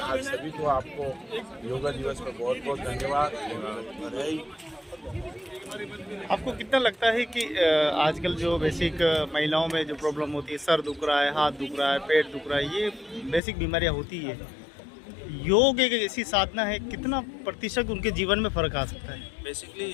आज सभी को आपको योगा दिवस पर बहुत बहुत धन्यवाद, बधाई। आपको कितना लगता है कि आजकल जो बेसिक महिलाओं में जो प्रॉब्लम होती है, सर दुख रहा है, हाथ दुख रहा है, पेट दुख रहा है, ये बेसिक बीमारियां होती है, योग एक ऐसी साधना है, कितना प्रतिशत उनके जीवन में फ़र्क आ सकता है? बेसिकली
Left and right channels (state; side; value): drops out; right; at 13.4 s